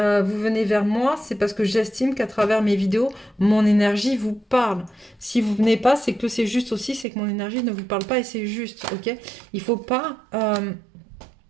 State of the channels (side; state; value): left; drops out; at 7.1 s